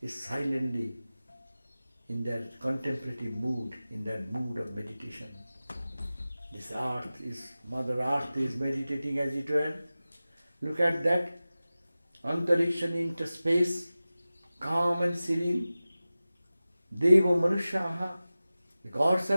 is silently in their contemplative mood, in their mood of meditation. This earth is, Mother Earth is meditating as it were. Look at that, antarikshan into space, calm and serene. Deva manushaha, the gods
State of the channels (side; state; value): both; inverted; correlation -0.96